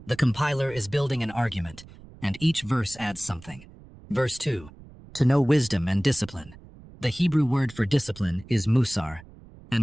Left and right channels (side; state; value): right; noise; rumble, 21 dB below the sound